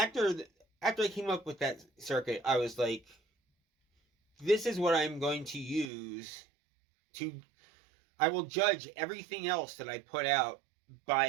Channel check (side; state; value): left; drops out; at 5.9 s